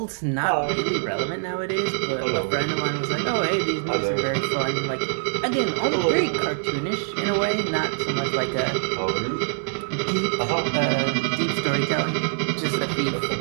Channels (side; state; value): left; silent; digital silence